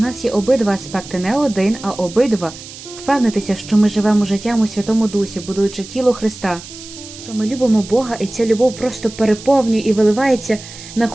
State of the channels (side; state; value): right; noise; hiss, 15 dB below the sound